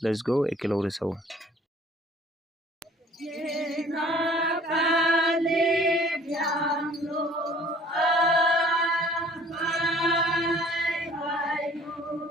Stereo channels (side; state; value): both; normal; correlation 0.53